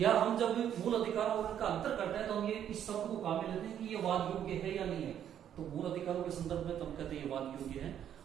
हम जब मूल अधिकारों और उनका अंतर करते हैं तो हम ये इस शब्द को काम में लेते हैं कि ये वाद योग्य है या नहीं है। तो मूल अधिकारों के संदर्भ में तो हम कहते हैं ये वाद योग्य है,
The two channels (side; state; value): left; quieter; 9.8 dB